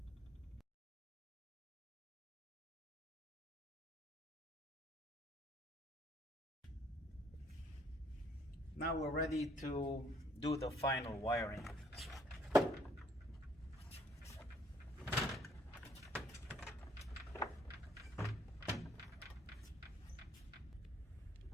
Now we're ready to do the final wiring.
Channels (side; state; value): both; normal; correlation 0.64